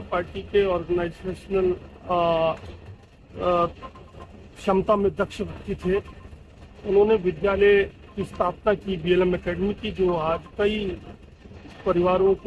पार्टी के ऑर्गेनाइजेशनल क्षमता में दक्ष व्यक्ति थे। उन्होंने विद्यालय की स्थापना की, DLM एकेडमी की, जो आज कई परिवारों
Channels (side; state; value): both; identical; correlation 1.00